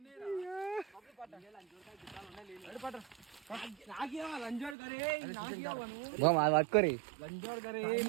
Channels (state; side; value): drops out; left; at 4.8 s